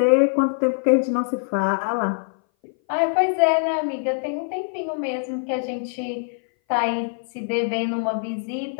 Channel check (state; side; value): silent; right; 59 dB below the other